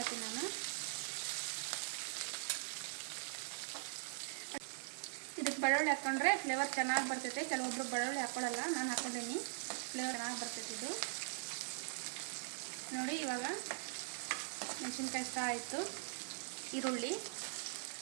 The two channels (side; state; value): left; silent; digital silence